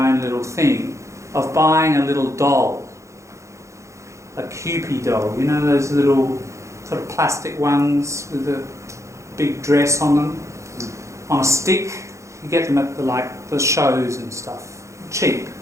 little thing of buying a little doll, a Kewpie doll, you know, those little sort of plastic ones with a big dress on them, on a stick. You get them at the shows and stuff, cheap.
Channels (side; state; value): left; late; 0.14 ms